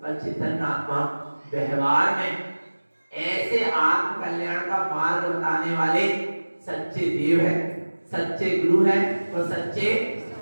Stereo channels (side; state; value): both; inverted; correlation -1.00